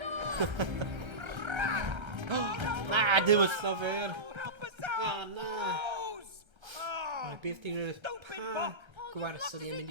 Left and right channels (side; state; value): left; late; 1.3 ms